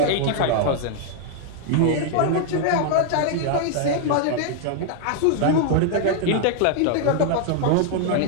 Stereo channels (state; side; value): different; both; correlation 0.00